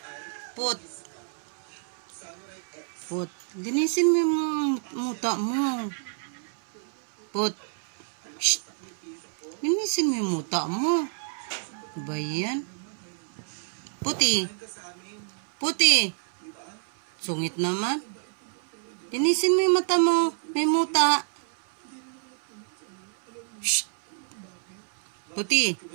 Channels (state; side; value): silent; left; 59 dB below the other